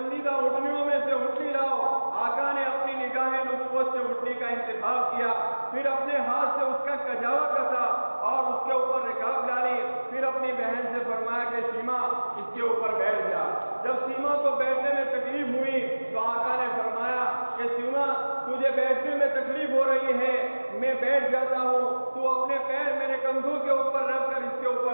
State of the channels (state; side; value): inverted; both; correlation -1.00